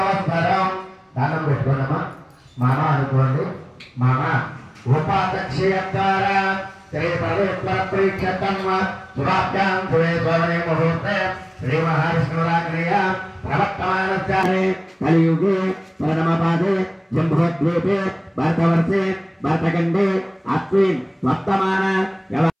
దానం పెట్టుకోండమ్మా. మామ అనుకోండి. మామ ఉపాధ్యక్షం ద్వారా శ్రీ పవిత్ర ప్రీక్షతమ్మ శుభాభ్యాం శుభే స్వర్ణే ముహూర్తే శ్రీ మహావిష్ణురాగ్నేయ ప్రవర్తమానస్యామి కలియుగే పరమపాదే జంబోద్వీపే భరతవర్షే భరతఖండే అస్మిన్ వర్తమాన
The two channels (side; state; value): both; identical; correlation 1.00